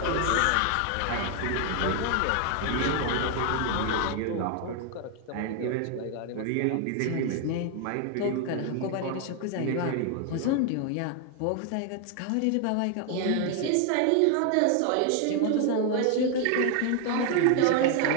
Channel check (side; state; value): both; different; correlation 0.00